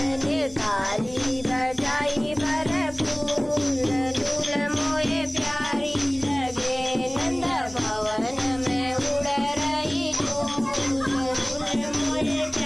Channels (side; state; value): left; noise; rumble, 19 dB below the sound